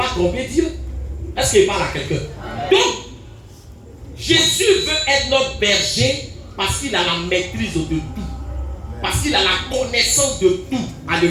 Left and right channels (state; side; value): identical; both; correlation 1.00